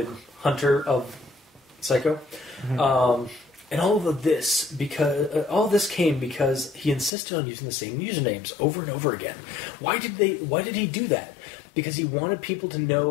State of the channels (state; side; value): drops out; right; at 7.1 s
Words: hunter of Psycho. Mm-hmm. And all of this came because he insisted on using the same usernames over and over again. Why did he do that? Because he wanted people to